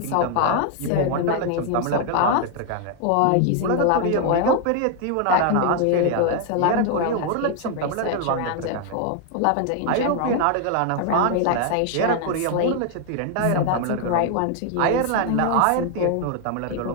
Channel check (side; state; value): both; different; correlation 0.00